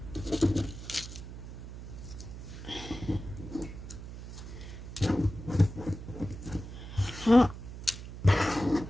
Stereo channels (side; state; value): right; noise; hum, 11 dB below the sound